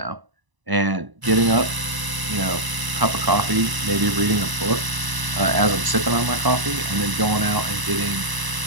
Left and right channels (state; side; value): late; left; 1.0 ms